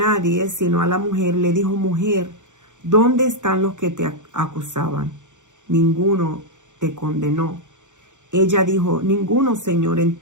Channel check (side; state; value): left; late; 0.85 ms